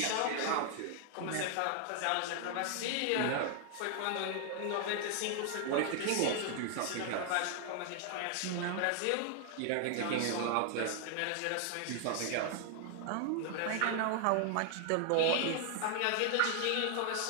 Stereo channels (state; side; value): different; both; correlation 0.00